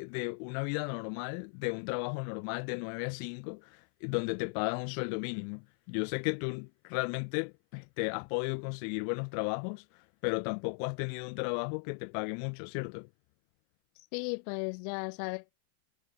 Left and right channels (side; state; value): right; silent; 53 dB below the other